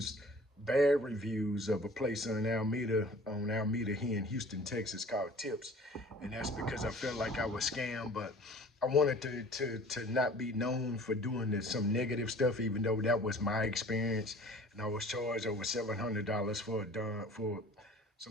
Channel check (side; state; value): both; normal; correlation 0.47